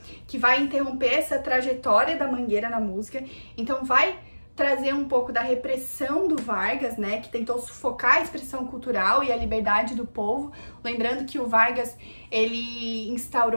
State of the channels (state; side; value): inverted; both; correlation -1.00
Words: que vai interromper essa trajetória da Mangueira na música. Então vai trazer um pouco da repressão do Vargas, né, que tentou sufocar a expressão cultural e a liberdade do povo. Lembrando que o Vargas, ele